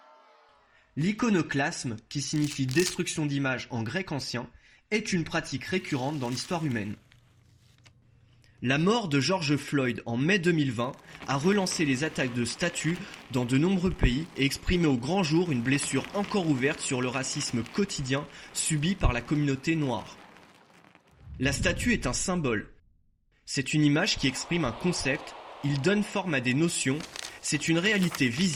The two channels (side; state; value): both; identical; correlation 1.00